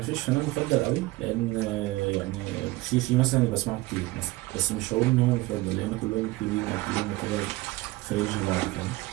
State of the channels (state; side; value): quieter; left; 20.1 dB